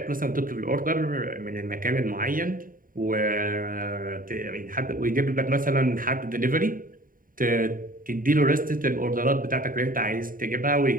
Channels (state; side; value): late; left; 0.40 ms